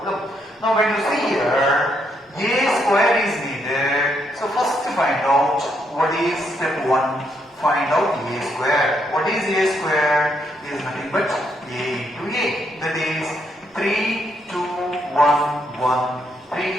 Now when you see here A square is needed, so first to find out what is step 1, find out A square. What is A square? Is nothing but A into A, that is 3, 2, 1, 1,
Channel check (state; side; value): normal; both; correlation 0.76